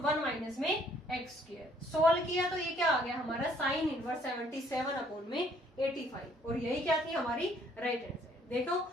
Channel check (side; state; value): both; normal; correlation 0.63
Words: 1 minus में x स्क्वायर। सोल्व किया तो ये क्या आ गया हमारा साइन इनवर्स 77 अपॉन में 85, और यही क्या थी हमारी राइट हैंड साइड। देखो